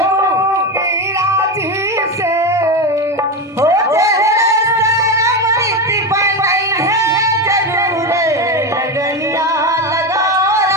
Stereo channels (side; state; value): both; normal; correlation 0.16